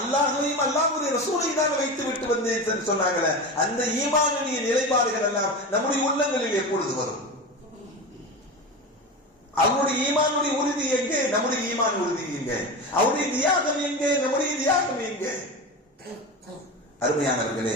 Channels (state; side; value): normal; both; correlation 0.25